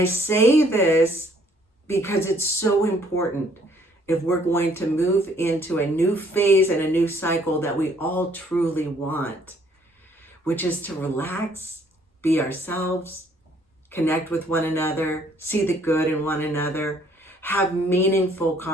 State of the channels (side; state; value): both; normal; correlation 0.63